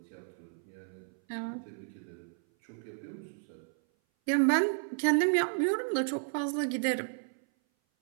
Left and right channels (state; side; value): silent; left; 56 dB below the other